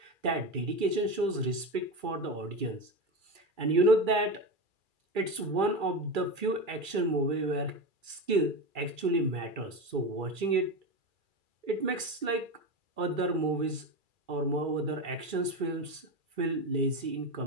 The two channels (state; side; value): late; left; 2.3 ms